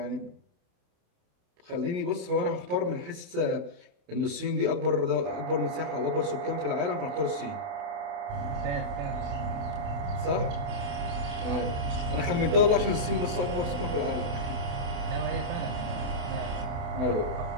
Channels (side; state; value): left; late; 28 ms